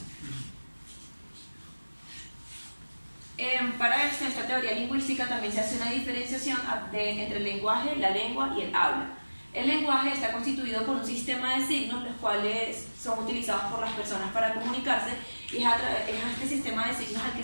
Para esto, en esta teoría lingüística también se hace una diferenciación entre el lenguaje, la lengua y el habla. El lenguaje está constituido por un sistema de signos, los cuales son utilizados por las personas para comunicarse, y es a este sistema de signos al que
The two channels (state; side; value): inverted; both; correlation -1.00